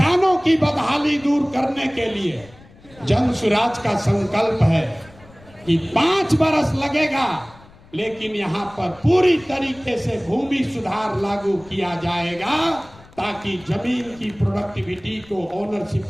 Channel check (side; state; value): left; noise; rumble, 24 dB below the sound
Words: की बदहाली दूर करने के लिए जन सुराज का संकल्प है कि 5 बरस लगेगा, लेकिन यहाँ पर पूरी तरीके से भूमि सुधार लागू किया जाएगा, ताकि जमीन की प्रोडक्टिविटी को, ओनरशिप